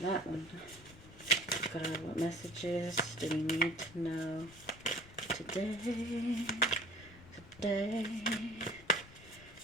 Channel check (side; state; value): left; noise; rumble, 23 dB below the sound